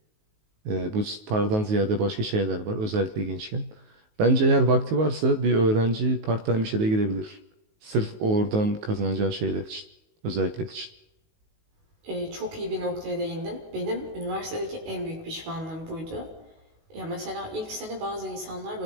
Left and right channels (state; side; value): late; left; 19 ms